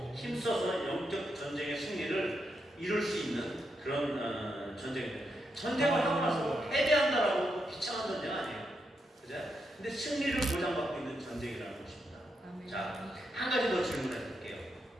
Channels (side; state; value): both; normal; correlation 0.83